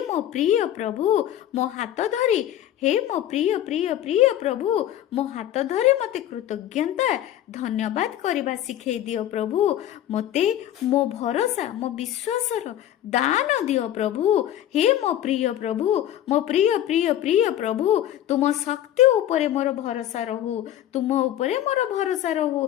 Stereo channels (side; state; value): right; quieter; 11.9 dB